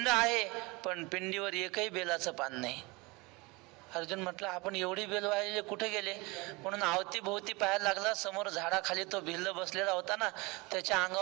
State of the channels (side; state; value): left; quieter; 25.4 dB